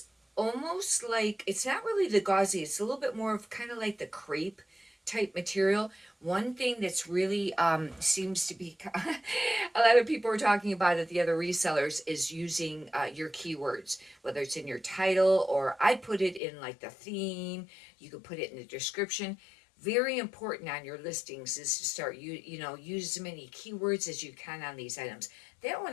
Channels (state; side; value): drops out; right; at 16.4 s